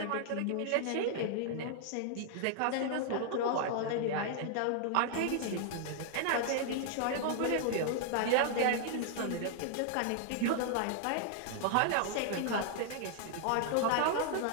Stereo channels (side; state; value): both; different; correlation 0.00